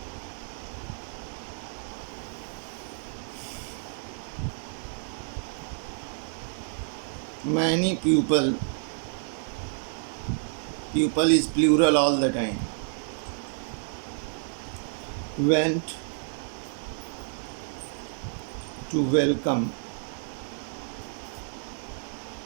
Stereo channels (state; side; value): silent; left; digital silence